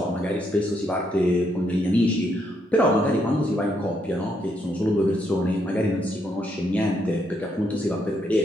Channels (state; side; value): normal; both; correlation 0.76